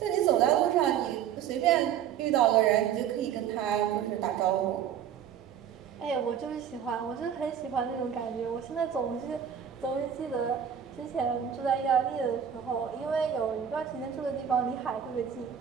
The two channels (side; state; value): left; quieter; 8.9 dB